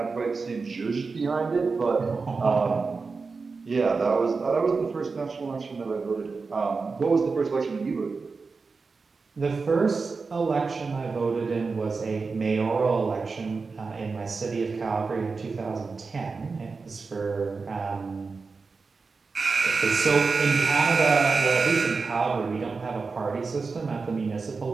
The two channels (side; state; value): left; quieter; 4.5 dB